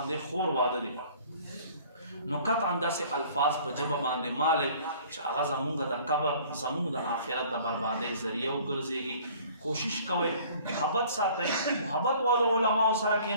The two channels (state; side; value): inverted; both; correlation -0.51